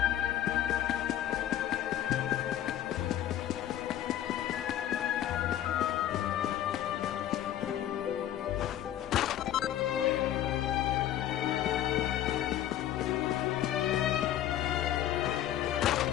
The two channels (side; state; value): right; quieter; 11.9 dB